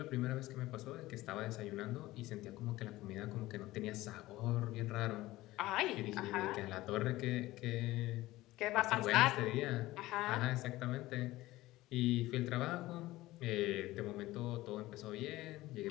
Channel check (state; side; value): quieter; right; 17.5 dB